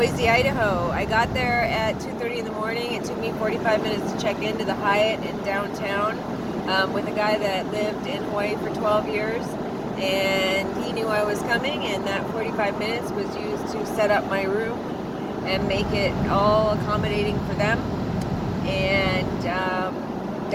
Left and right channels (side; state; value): both; identical; correlation 1.00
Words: Idaho. I got there at 2:30 in the morning. It took me 45 minutes to check into the Hyatt in downtown with a guy that lived in Hawaii for 12 years. And he knew I was coming, and that 45 minutes was used to set up my room and make it all accommodating for them. And